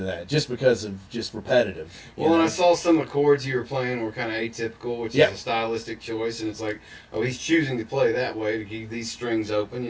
that, just because of just repetitive. Well, and I saw some of the chords you were playing were kind of atypical, which is a stylistic choice, and it's like, oh, he's choosing to play that way to keep these strings open.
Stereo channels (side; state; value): both; identical; correlation 1.00